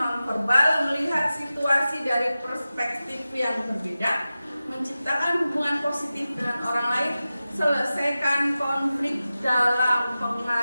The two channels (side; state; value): both; inverted; correlation -0.95